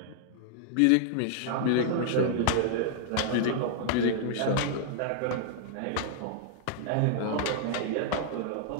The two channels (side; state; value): both; different; correlation -0.01